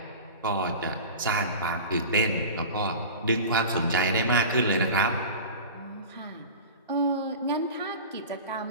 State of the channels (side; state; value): both; inverted; correlation -0.33